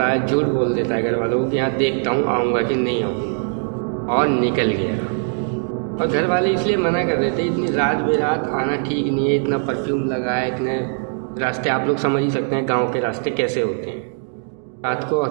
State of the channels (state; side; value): silent; left; digital silence